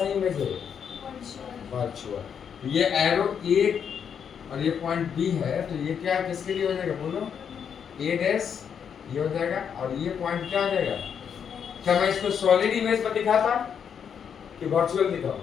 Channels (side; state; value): right; quieter; 7.6 dB